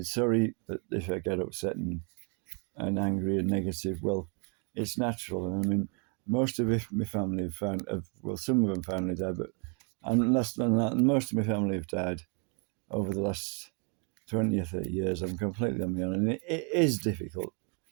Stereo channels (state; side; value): quieter; left; 37.7 dB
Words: Sorry that if I get upset and angry and negative. Well, it's natural. And I mean, most of my family have found, well, some of them finally died, but and less than that, most of my family have died over the last 20 or 30 years. I'm completely on my own, and it is difficult